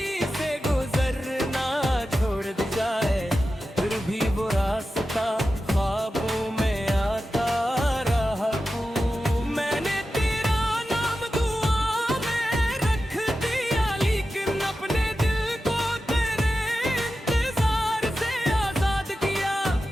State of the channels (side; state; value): both; normal; correlation 0.92